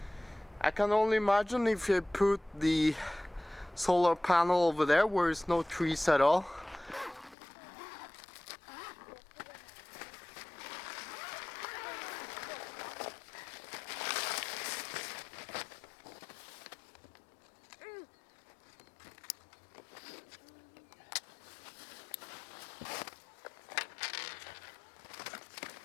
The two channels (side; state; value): right; drops out; at 7.4 s